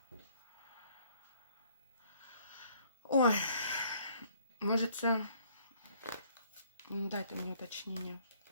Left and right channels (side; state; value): both; inverted; correlation -0.62